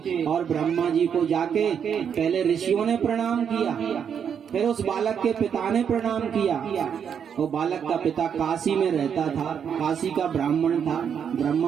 और ब्रह्मा जी को जाके पहले ऋषियों ने प्रणाम किया, फिर उस बालक के पिता ने प्रणाम किया। वो बालक का पिता काशी में रहता था, काशी का ब्राह्मण था।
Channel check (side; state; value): left; quieter; 7.7 dB